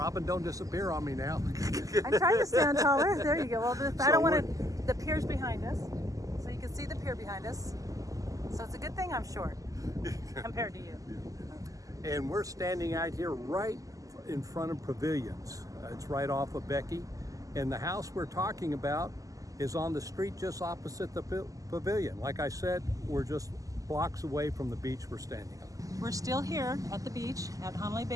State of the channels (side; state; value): left; late; 0.17 ms